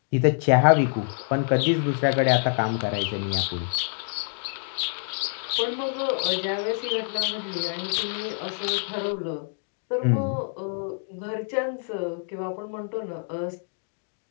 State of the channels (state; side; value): silent; right; digital silence